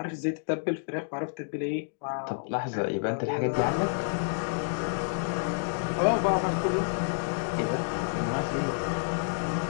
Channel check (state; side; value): silent; right; digital silence